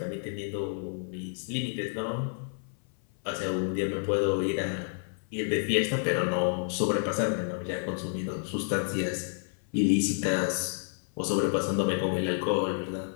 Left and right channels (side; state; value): right; silent; 56 dB below the other